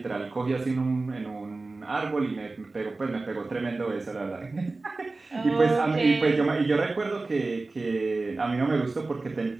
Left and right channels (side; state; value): left; quieter; 3.4 dB